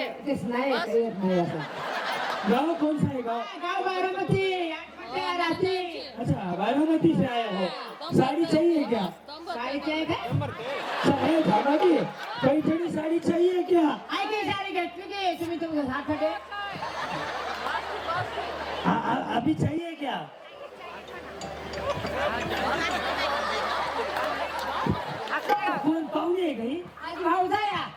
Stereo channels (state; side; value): identical; both; correlation 1.00